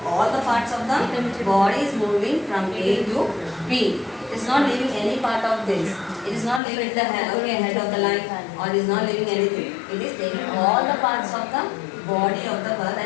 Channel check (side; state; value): right; drops out; at 6.6 s